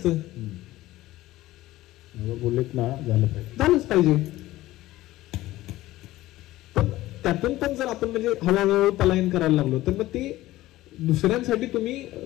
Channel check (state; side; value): quieter; right; 16.6 dB